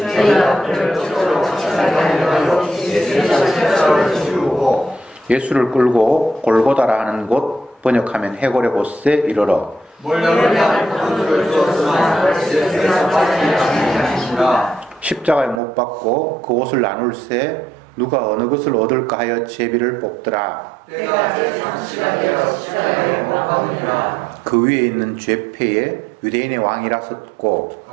예수를 끌고 골고다라 하는 곳, 번역하면 해골의 곳에 이르러 십자가에 못 박고 그 옷을 나눌세 누가 어느 것을 얻을까 하여 제비를 뽑더라. 그 위에 있는 죄패에 유대인의 왕이라 썼고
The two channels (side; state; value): left; drops out; at 15.6 s